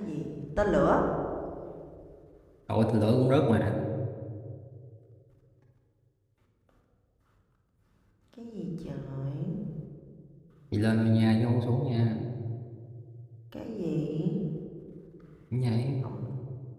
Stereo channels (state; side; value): identical; both; correlation 1.00